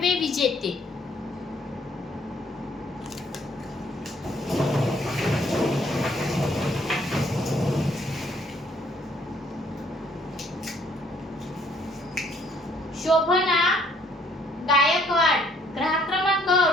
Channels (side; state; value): both; normal; correlation 0.64